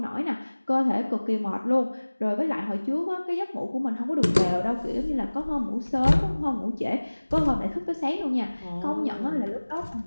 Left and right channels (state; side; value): inverted; both; correlation -1.00